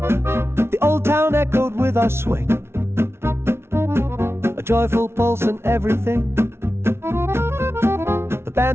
The old town echoed with our swing, a joyful pulse in everything. The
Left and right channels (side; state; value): left; late; 0.12 ms